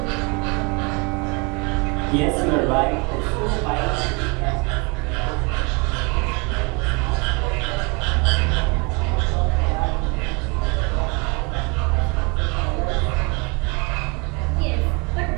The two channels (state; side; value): quieter; left; 30.6 dB